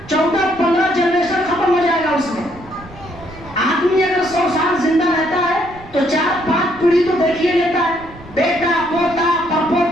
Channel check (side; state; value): right; noise; rumble, 19 dB below the sound